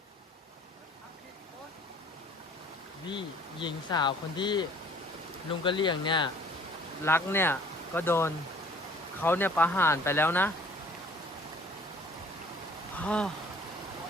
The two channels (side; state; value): both; normal; correlation 0.54